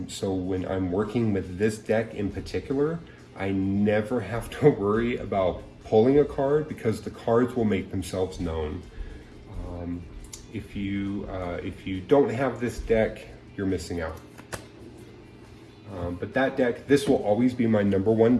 So when I'm working with this deck in particular, I never have to worry about pulling a card because the cards will make themselves known. If you don't have this deck, you're missing out. But that deck, this will always be my #1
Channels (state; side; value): identical; both; correlation 1.00